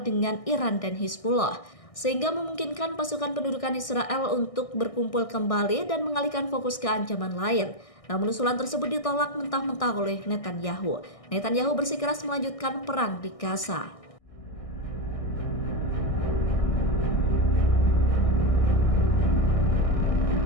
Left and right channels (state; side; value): late; right; 1.6 ms